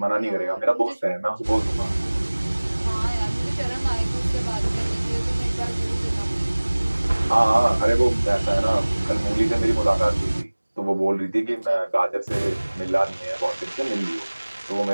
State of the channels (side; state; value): both; inverted; correlation -1.00